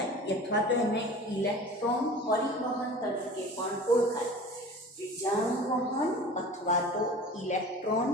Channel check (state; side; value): normal; both; correlation 0.39